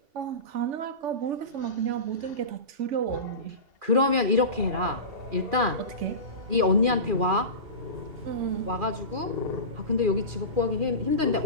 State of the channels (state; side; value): late; left; 2.4 ms